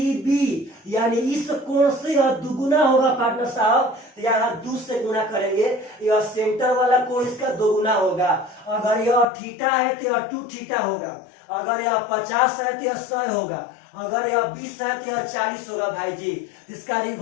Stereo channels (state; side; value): drops out; right; at 9.2 s